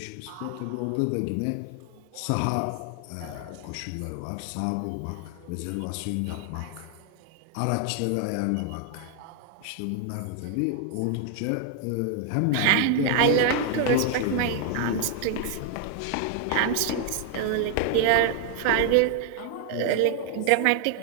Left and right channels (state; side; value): different; both; correlation 0.00